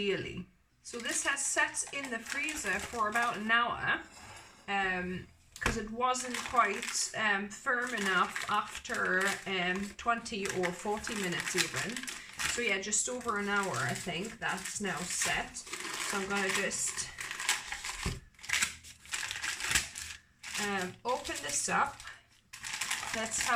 So this has sat in the freezer for about an hour, because it wasn't quite firm enough after 20 or 40 minutes even. So yeah, just over an hour I think that's now set. So I'm gonna just open this up. Let's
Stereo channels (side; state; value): both; identical; correlation 1.00